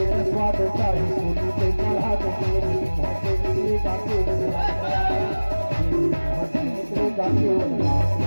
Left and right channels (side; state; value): both; inverted; correlation -1.00